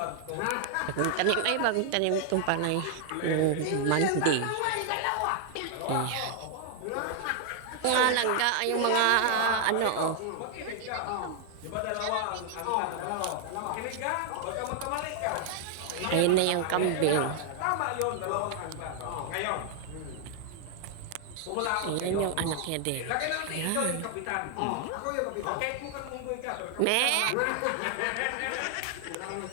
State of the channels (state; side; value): different; both; correlation 0.00